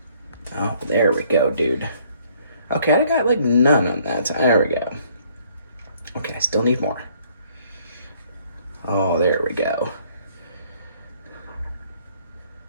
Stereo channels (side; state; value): both; inverted; correlation -0.63